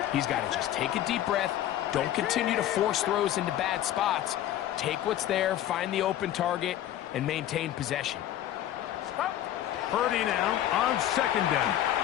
He's got to just take a deep breath. Don't continue to force throws into bad spots. Take what's there, find the open target, and maintain possession. Purdy now on second down.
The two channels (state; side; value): quieter; right; 12.3 dB